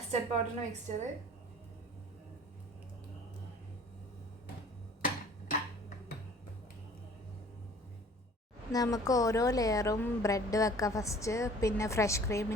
പൗഡറിൻ്റെ മിക്സ്ചർ നമുക്ക് ഓരോ ലെയറും ബ്രെഡ് വെക്കാം ഫസ്റ്റ്, പിന്നെ ഫ്രഷ്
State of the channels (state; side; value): normal; both; correlation 0.50